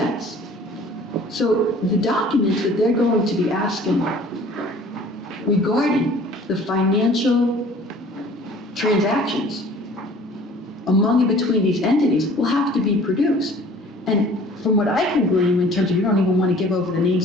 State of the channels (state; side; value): normal; both; correlation 0.50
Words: So the documents that they're going to be asking regarding the financial transactions among and between these entities will have to be produced. And from what I can glean, in terms of you don't even want to give over the